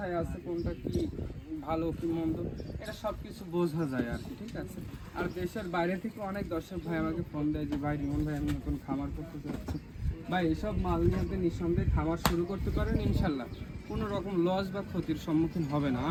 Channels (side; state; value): both; identical; correlation 1.00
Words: আছে, কোনটা কি ভালো কি মন্দ, এটা সব কিছু বোঝা যায় আর কি। ঠিক আছে। আর দেশের বাইরে থেকে অনেক দর্শক ভাই আমাকে ফোন দেয় যে ভাই রিমন ভাই আমি নতুন খামার করতে চাচ্ছি। ভাই এসব মাল নিয়ে আপনি নিঃসন্দেহে খামার শুরু করতে পারেন, ইনশাল্লাহ কোনো রকম লস বা ক্ষতির সম্মুখীন হবে না,